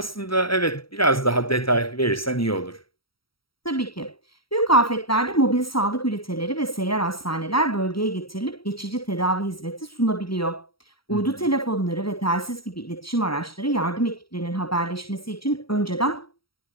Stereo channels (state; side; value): late; right; 0.75 ms